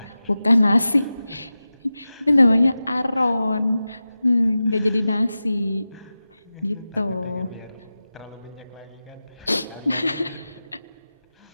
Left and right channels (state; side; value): inverted; both; correlation -0.94